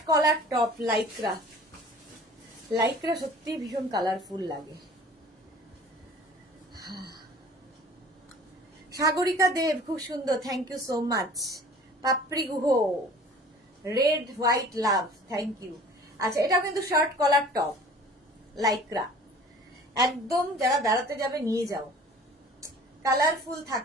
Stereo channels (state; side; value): normal; both; correlation 0.47